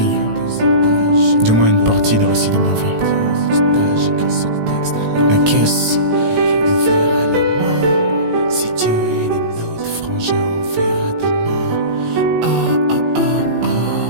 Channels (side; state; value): left; late; 18 ms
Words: Du moins une partie du récit de ma vie. La caisse. Si Dieu est de notre frangin, on verra demain.